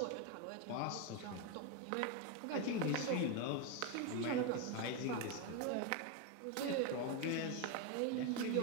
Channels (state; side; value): different; both; correlation 0.02